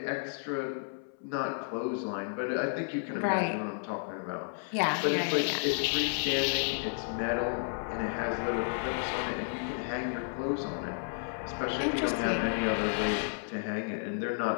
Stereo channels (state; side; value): silent; right; 56 dB below the other